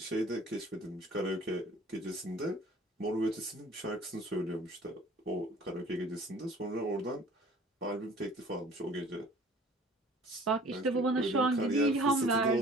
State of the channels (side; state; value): both; normal; correlation 0.50